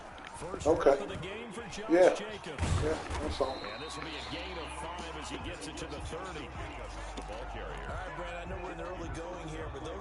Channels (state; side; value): identical; both; correlation 1.00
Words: First Okay. of the game for Josh Jacobs. Yeah, that's all. And this will be a gain of 5 as he gets it to the 30. The ball carrier. All right, Brad, I know we're in the early going here, but